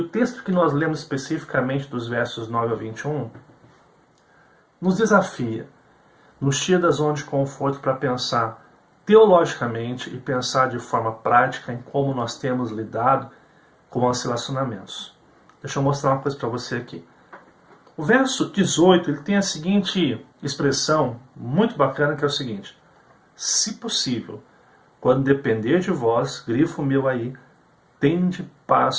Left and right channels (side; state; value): both; identical; correlation 1.00